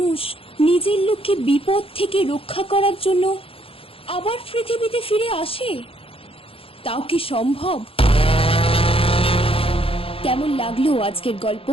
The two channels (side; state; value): right; late; 0.27 ms